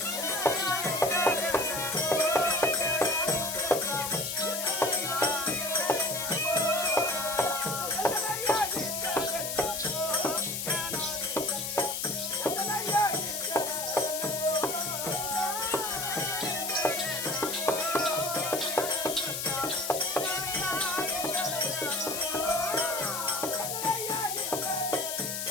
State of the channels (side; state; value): left; noise; hiss, 3 dB below the sound